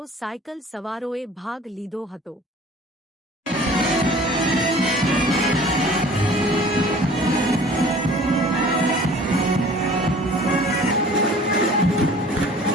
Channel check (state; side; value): normal; both; correlation 0.48